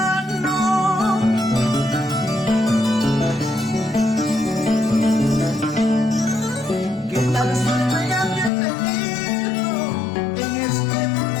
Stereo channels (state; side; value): drops out; right; at 8.5 s